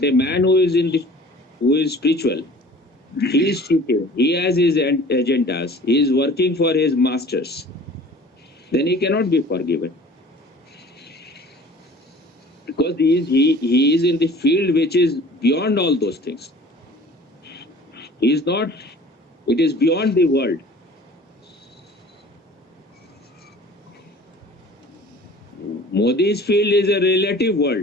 a man who is spiritual, he is cheating. He has his agendas. He is working for his masters. Then he cannot be forgiven. Because he is in the field which is beyond all those things. He is not. It is beyond the world. Modi's field is a relative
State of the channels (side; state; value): both; normal; correlation 0.46